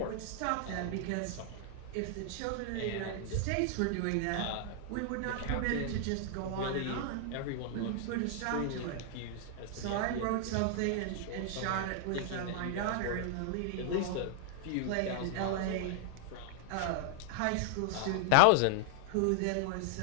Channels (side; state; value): both; different; correlation 0.00